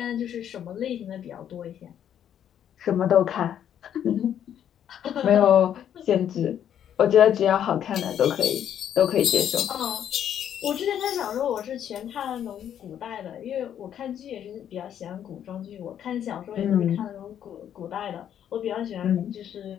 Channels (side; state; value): right; quieter; 9.8 dB